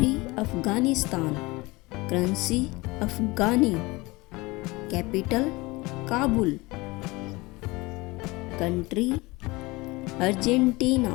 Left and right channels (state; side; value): quieter; right; 22.9 dB